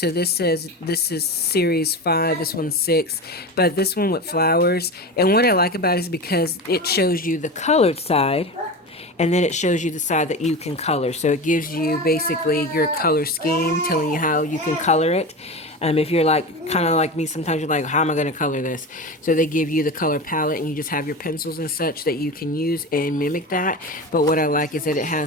this says this is series 5, this one's 6, but this one with flowers. And what I like about it is because it shows you the colored side, and then it shows you the side that you can color. So it gives you basically your color scheme, telling you how you can color it. If you're like kind of like me, sometimes you're like, how am I going to color this? So they give you the color palette, and you just have your pencils and such that you can use and mimic that. But what I like is that it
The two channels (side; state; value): both; normal; correlation 0.26